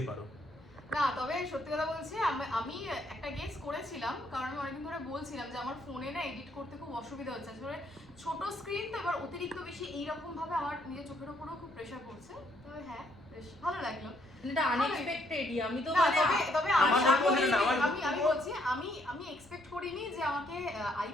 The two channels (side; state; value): left; noise; rumble, 26 dB below the sound